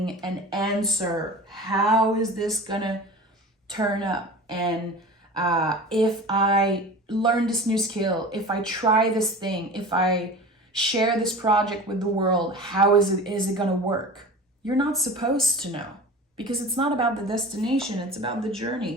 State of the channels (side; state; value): both; normal; correlation 0.36